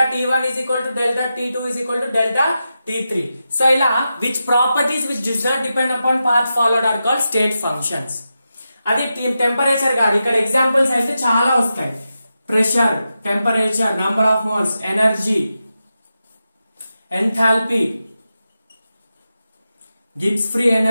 T1 is equal to delta T2 is equal to delta T3. So ఇలా which properties which does not depend upon path followed are called state functions. అది temperature కాదు, ఇక్కడ examples అయితే చాలా వస్తాయి. Pressure, temperature, number of moles, energy, enthalpy, Gibbs free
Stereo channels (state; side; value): inverted; both; correlation -0.90